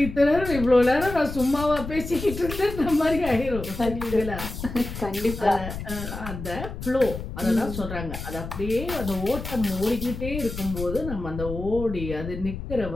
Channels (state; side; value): noise; left; rumble, 8 dB below the sound